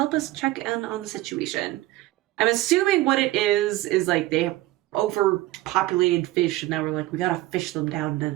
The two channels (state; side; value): quieter; left; 17.5 dB